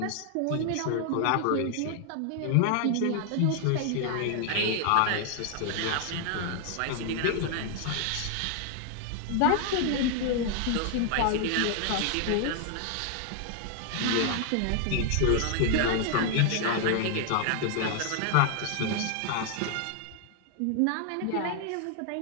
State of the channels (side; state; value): both; different; correlation 0.00